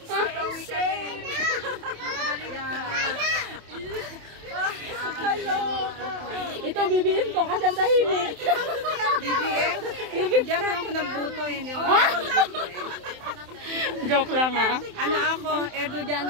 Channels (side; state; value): left; late; 27 ms